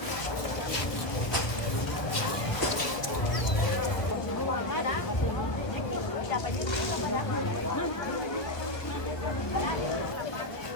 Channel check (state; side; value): late; right; 1.2 ms